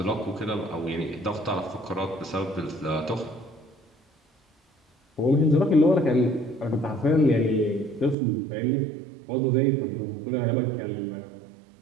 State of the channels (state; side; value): drops out; left; at 8.2 s